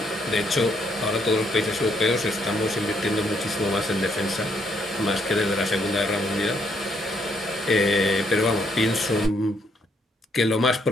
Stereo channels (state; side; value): normal; both; correlation 0.72